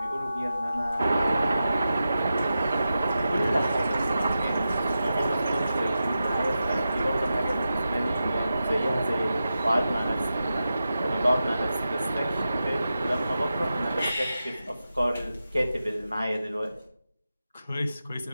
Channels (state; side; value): inverted; both; correlation -0.91